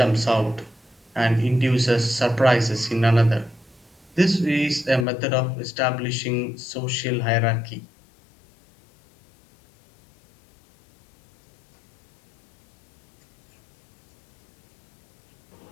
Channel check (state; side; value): drops out; right; at 5.1 s